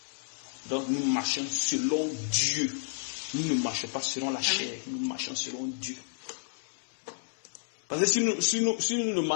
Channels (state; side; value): silent; right; 57 dB below the other